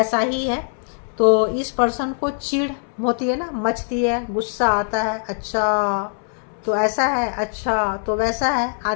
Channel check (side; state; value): right; silent; 64 dB below the other